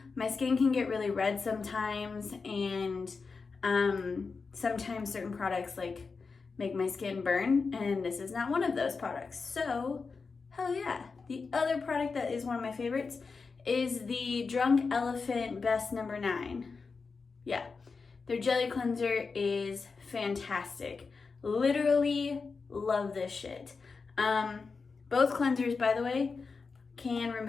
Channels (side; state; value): right; quieter; 4.7 dB